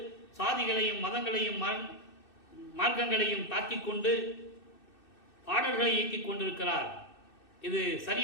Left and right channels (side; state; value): right; late; 2.6 ms